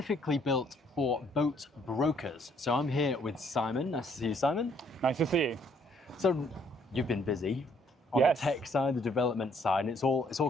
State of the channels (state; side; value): normal; both; correlation 0.66